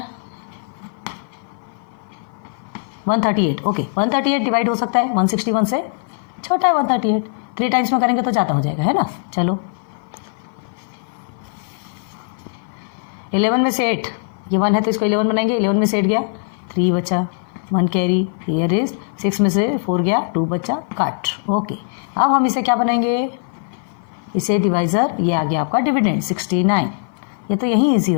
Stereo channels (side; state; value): right; silent; 56 dB below the other